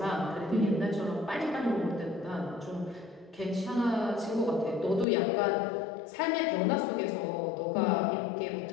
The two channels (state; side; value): drops out; right; at 5.1 s